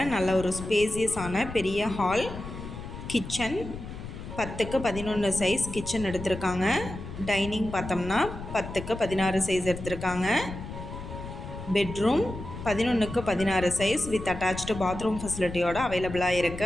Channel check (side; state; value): left; noise; rumble, 10 dB below the sound